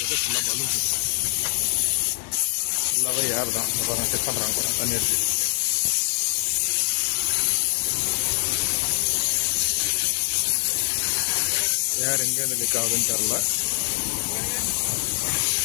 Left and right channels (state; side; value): silent; right; 63 dB below the other